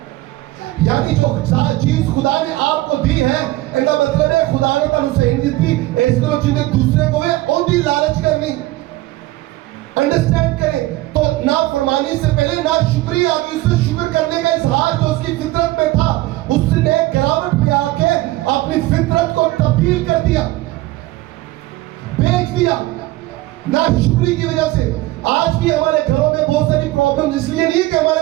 یعنی جو چیز خدا نے آپ کو دی ہے, ان کا مطلب ہے خدا نے تم سے نہیں دی, اس طرح چیزیں دوسرے کو ہے ان کی لالچ کرنی. انڈرسٹینڈ کریں. تو نافرمانی سے پہلے ناشکری آ گئی. اس سے شکر کرنے کا اظہار جو اس کی فطرت میں تھا, اس نے گراوٹ میں آ کے اپنی فطرت کو تبدیل کر دیا, بیچ دیا ناشکری کی وجہ سے. آج بھی ہمارے گھروں میں بہت ساری پرابلم اس لیے نہیں کہ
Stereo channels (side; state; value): left; quieter; 18.0 dB